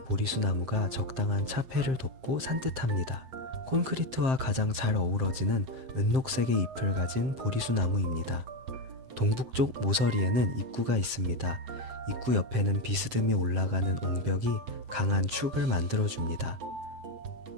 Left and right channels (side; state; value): left; late; 7.6 ms